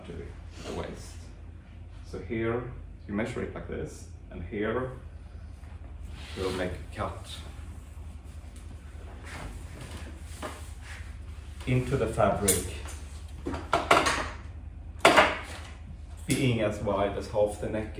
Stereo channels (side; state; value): both; identical; correlation 1.00